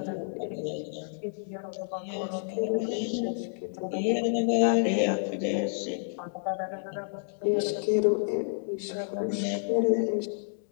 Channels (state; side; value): silent; right; digital silence